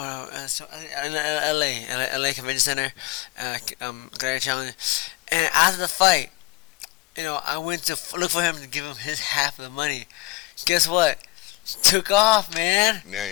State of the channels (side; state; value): right; quieter; 21.5 dB